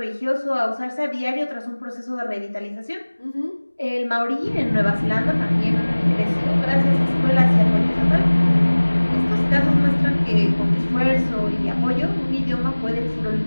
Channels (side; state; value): both; inverted; correlation -1.00